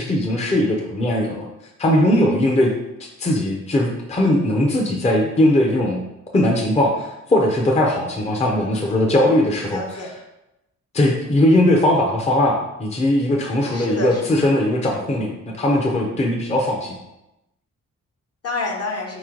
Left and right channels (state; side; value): normal; both; correlation 0.61